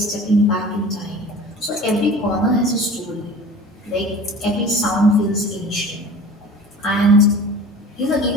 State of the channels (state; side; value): normal; both; correlation 0.40